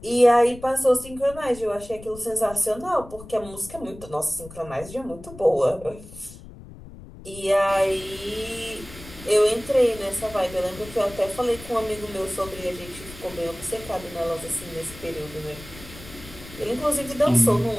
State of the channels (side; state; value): left; noise; rumble, 17 dB below the sound